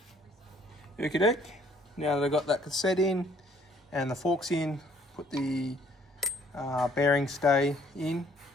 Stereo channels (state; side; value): normal; both; correlation 0.61